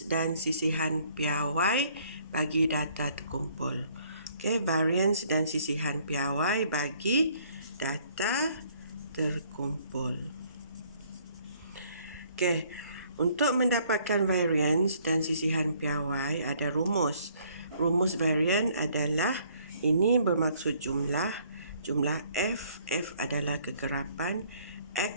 dan sisihan piawai bagi data terkumpul. Okay, variance dan sisihan piawai bagi data terkumpul. Okay, untuk mendapatkan variance dan sisihan piawai ada rumus. Rumus variance adalah ini bermaksud jumlah F adalah kekerapan,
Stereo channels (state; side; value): inverted; both; correlation -0.63